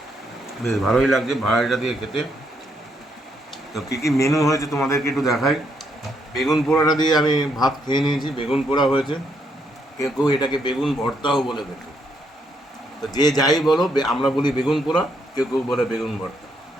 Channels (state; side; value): normal; both; correlation 0.75